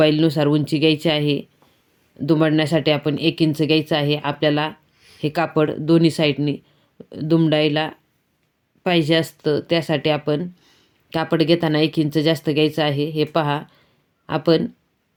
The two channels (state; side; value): identical; both; correlation 1.00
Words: उंची घ्यायची आहे. दुमडण्यासाठी आपण 1 इंच घ्यायचं आहे. आपल्याला हे कापड दोन्ही साईडनी दुमडायला पाहिजे असतं, त्यासाठी आपण कापड घेताना 1 इंच जास्त घ्यायचं आहे. हे पहा, आपण